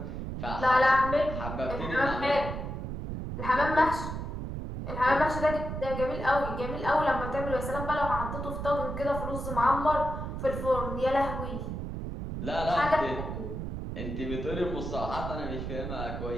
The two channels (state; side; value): noise; right; rumble, 5 dB below the sound